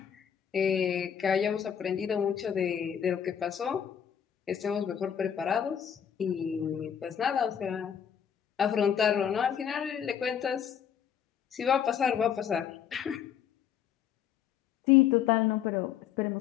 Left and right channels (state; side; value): quieter; right; 8.6 dB